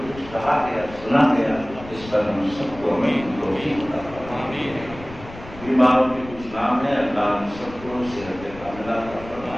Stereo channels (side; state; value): left; noise; rumble, 16 dB below the sound